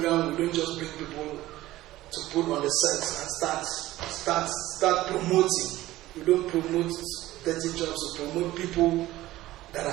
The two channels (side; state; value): left; quieter; 16.2 dB